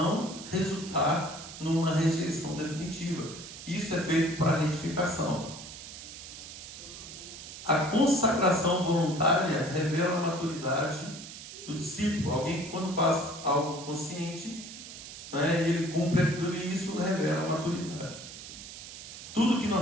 resultar numa rejeição definitiva. Isso é feito para retificação. A consagração voluntária revela a maturidade do discípulo. Alguém que, quando faz algo consciente, né, ele cumpre aquilo e isso revela a maturidade. Tudo que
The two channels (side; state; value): right; noise; hiss, 12 dB below the sound